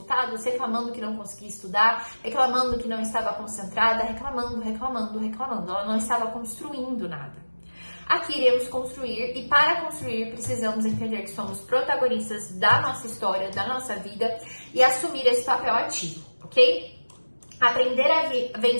reclamando que não conseguia estudar, reclamando que não estava concentrada, reclamando. Ela não estava construindo nada. Aqui iremos construir e para construir precisamos entender que somos protagonistas da nossa história, da nossa vida e assumir esse papel ativo, ok? Aprender a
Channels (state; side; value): inverted; both; correlation -1.00